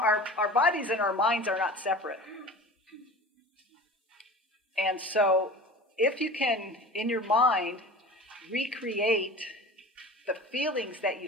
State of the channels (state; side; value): normal; both; correlation 0.37